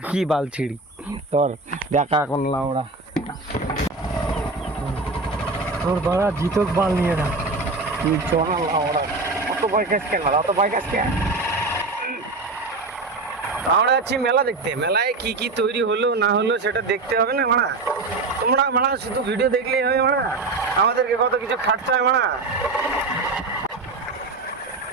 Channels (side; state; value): left; quieter; 3.6 dB